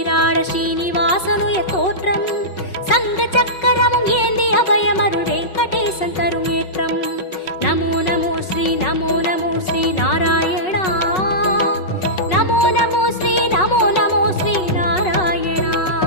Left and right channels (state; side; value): late; right; 5.4 ms